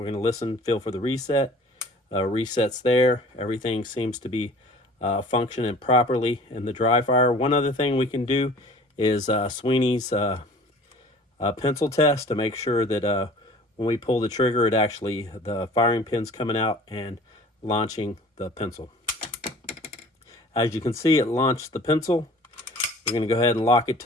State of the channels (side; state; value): both; normal; correlation 0.47